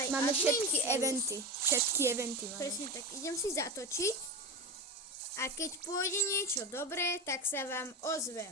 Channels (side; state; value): both; normal; correlation 0.21